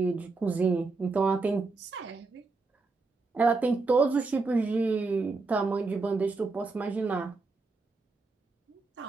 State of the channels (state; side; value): quieter; left; 3.8 dB